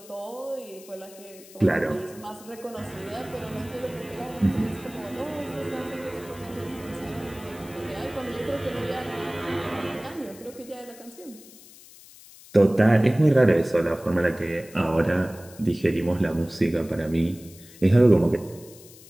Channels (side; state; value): left; noise; hiss, 21 dB below the sound